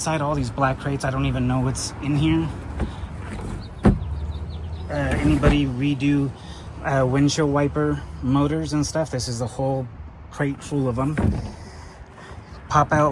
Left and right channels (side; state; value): both; identical; correlation 1.00